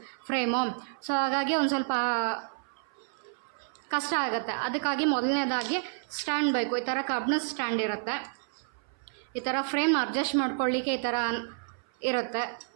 ಫ್ರೇಮು. ಸೊ ಹಾಗಾಗಿ ಒಂದು ಸ್ವಲ್ಪ ಕಷ್ಟ ಆಗುತ್ತೆ. ಅದಕ್ಕಾಗಿ ಮೊದಲನೇದಾಗಿ ಸ್ಟ್ಯಾಂಡ್ ಬೇಕು. ಈ ಥರ ಕಬ್ಬಿಣದ ಸ್ಟ್ಯಾಂಡ್ ಇರುತ್ತೆ. ಈ ಥರ ಫ್ರೇಮ್ ಅಡ್ಜಸ್ಟ್ ಮಾಡ್ಕೊಳ್ಳಿಕ್ಕೆ ಈ ಥರ ಇರುತ್ತೆ,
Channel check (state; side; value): silent; left; 55 dB below the other